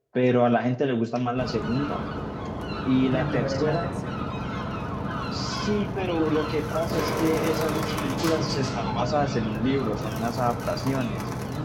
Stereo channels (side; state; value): both; identical; correlation 1.00